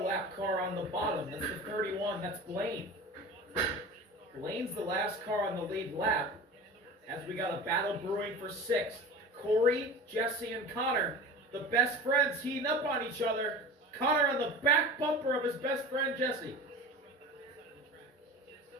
car on the bottom. That's the 31. That's Blaine. Blaine's the last car on the lead lap. As we got a battle brewing for 6th. Corey, Jesse, and Connor, the best friends, heating up on each other. Connor on the back bumper of his best friend, Jesse.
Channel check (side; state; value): both; normal; correlation 0.35